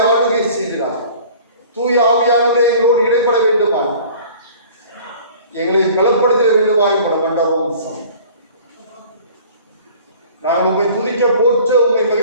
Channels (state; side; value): inverted; both; correlation -0.47